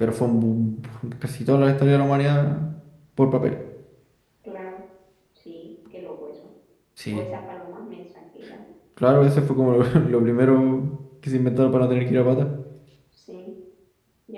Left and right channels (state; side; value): identical; both; correlation 1.00